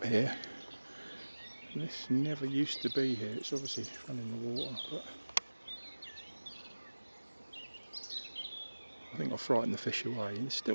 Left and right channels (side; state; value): both; inverted; correlation -1.00